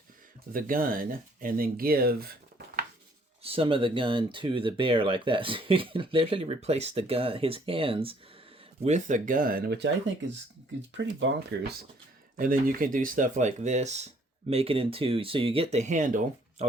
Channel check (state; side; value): normal; both; correlation 0.62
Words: the gun and then give some of the gun to the bear like that. So you can literally replace the gun, his hands, with a gun, which I think is pretty bonkers. And then you can do stuff like this, make it into, so you get the handle. I'll